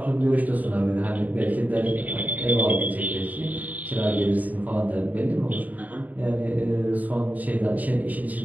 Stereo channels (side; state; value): left; late; 0.077 ms